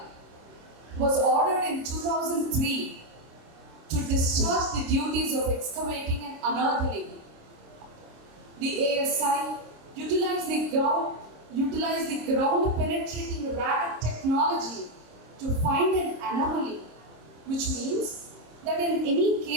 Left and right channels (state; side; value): late; left; 26 ms